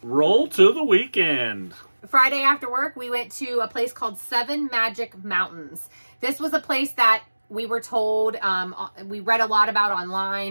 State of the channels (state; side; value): inverted; both; correlation -1.00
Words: Roll to the weekend. Friday after work, we went to a place called Seven Magic Mountains. This was a place that we were told, we read a lot about